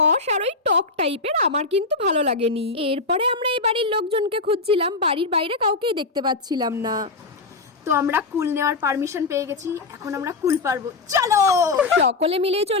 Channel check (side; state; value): right; quieter; 3.7 dB